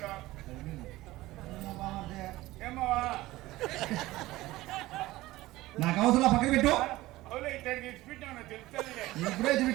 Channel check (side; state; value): left; quieter; 17.9 dB